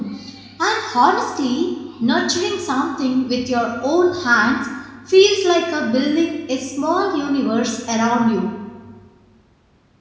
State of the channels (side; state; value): both; identical; correlation 1.00